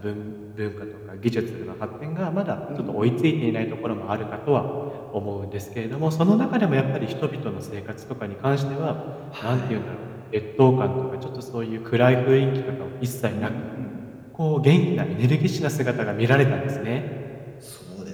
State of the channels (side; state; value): both; identical; correlation 1.00